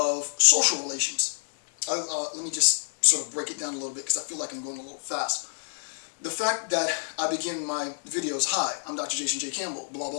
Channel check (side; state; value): right; silent; digital silence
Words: social relations. Let me just sort of break it down a little bit because I feel like I'm going a little fast. The fact that I begin my videos, hi, I'm Dr. Jason J. Campbell, blah,